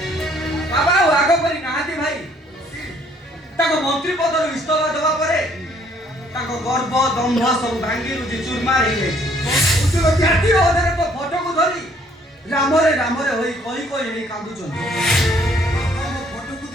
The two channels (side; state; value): both; normal; correlation 0.63